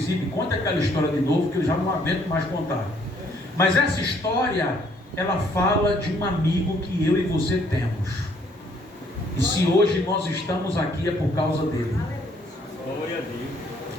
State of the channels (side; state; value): both; normal; correlation 0.65